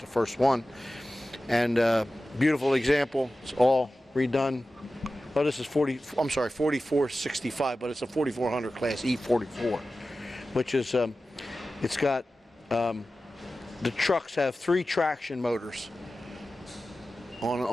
first one. And beautiful example. It's all redone. Oh, this is 4465, but it's a 4400 class E44, which is, it's got, the trucks have 3 traction motors.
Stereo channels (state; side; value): normal; both; correlation 0.95